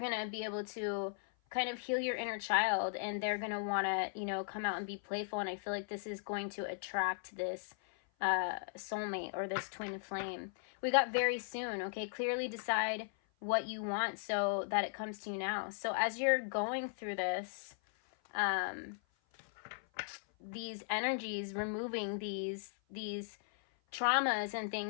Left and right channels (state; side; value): silent; right; 53 dB below the other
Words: to be able to kind of heal your inner child, and they're going to want to, you know, come out and be playful. And I feel like this is going to attract this soulmate or this twin flame. We got very soon, okay? Clearly decide what you want so that it comes to you now. So as you're going through this, these energies, removing these traumas and